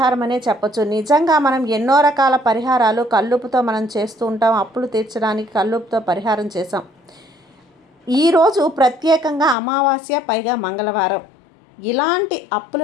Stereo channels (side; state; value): right; drops out; at 9.6 s